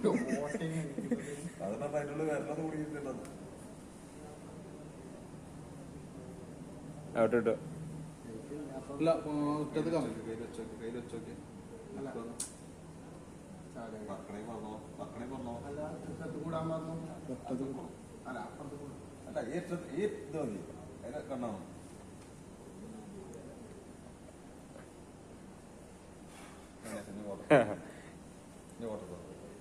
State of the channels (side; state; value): both; identical; correlation 1.00